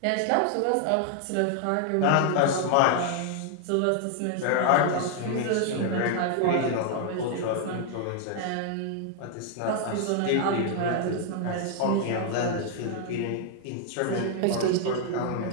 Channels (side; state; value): both; different; correlation 0.00